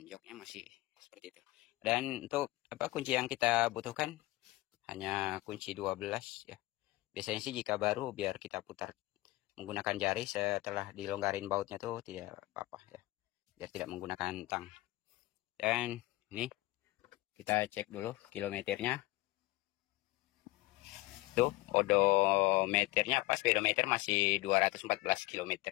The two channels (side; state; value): right; quieter; 19.5 dB